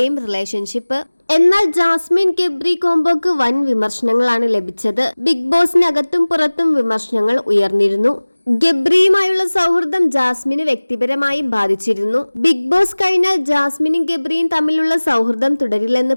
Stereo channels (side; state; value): both; inverted; correlation -1.00